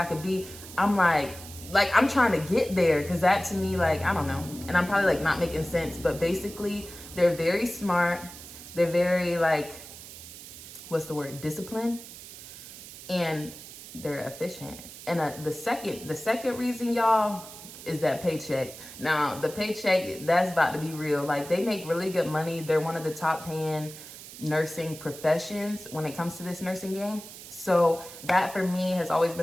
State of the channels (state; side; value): noise; right; hiss, 15 dB below the sound